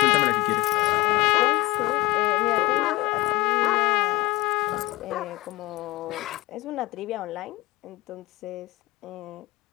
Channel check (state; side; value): quieter; right; 20.5 dB